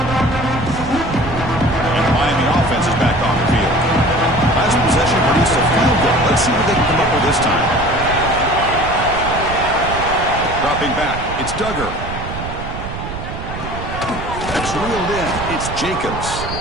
And the Miami offense is back on the field. It's Duggar. That's reeled in. It's Jacobs.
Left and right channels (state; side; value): noise; right; rumble, 8 dB below the sound